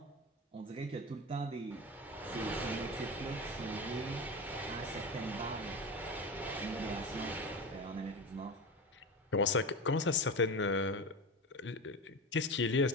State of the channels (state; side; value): normal; both; correlation 0.24